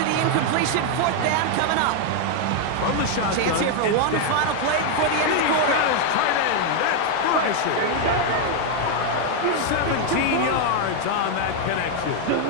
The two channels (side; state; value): both; different; correlation 0.01